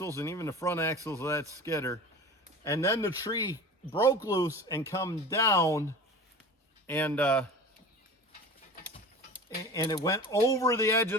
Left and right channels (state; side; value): normal; both; correlation 0.36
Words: and even the front axles of that skidder. And then the tree broke loose and come down, and it went over the edge